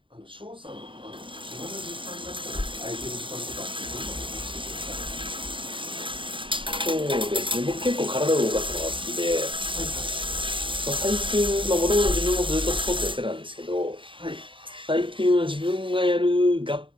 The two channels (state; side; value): late; left; 0.25 ms